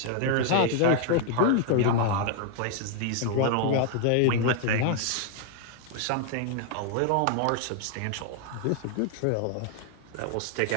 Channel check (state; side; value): different; both; correlation 0.00